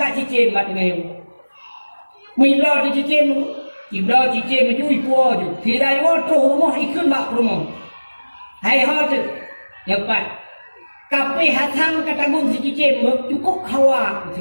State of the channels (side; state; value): both; inverted; correlation -1.00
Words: cicit mat ngayon. Mila di cicit mu, ibla cicit mencuri puas je. Si rayuan tu rumah ikut mak rumah. Hai hot, cepat. Kape hatam katagung si cicit mu cukup hawa ke